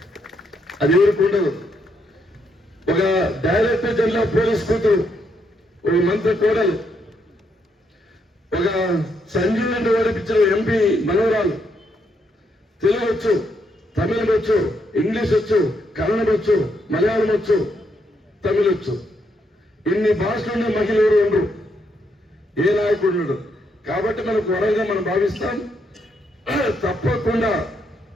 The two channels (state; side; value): normal; both; correlation 0.77